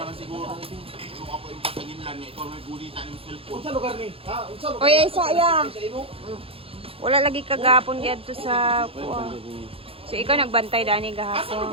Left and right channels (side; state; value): left; late; 0.27 ms